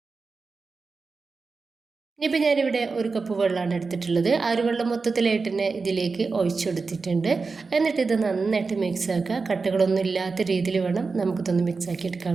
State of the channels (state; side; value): quieter; left; 4.4 dB